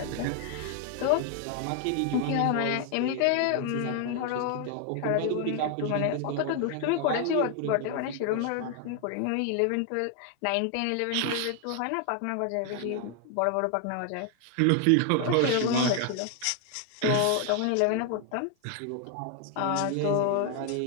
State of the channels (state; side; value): different; both; correlation 0.00